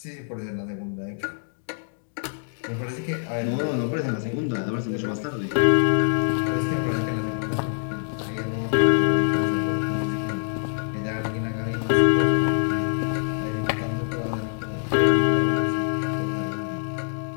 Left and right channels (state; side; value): silent; right; digital silence